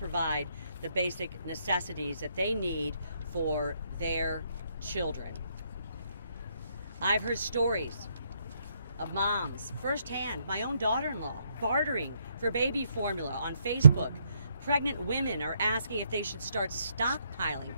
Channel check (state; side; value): inverted; both; correlation -0.74